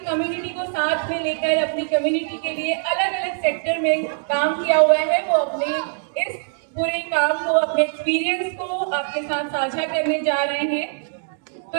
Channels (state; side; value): silent; left; digital silence